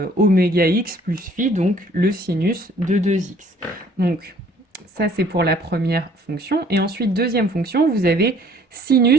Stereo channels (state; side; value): normal; both; correlation 0.58